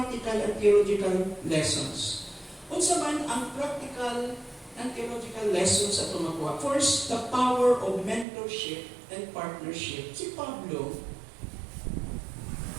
and theological lessons. Unsa man ang practical and theological lessons sa tumakuha? First, the power of mentorship and partnership. Si Pablo,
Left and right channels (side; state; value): left; drops out; at 8.2 s